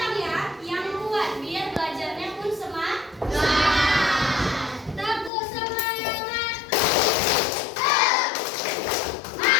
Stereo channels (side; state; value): right; drops out; at 5.3 s